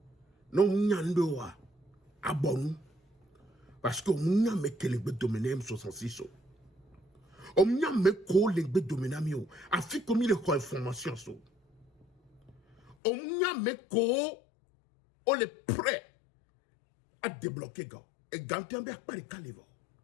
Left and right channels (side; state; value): right; drops out; at 13.0 s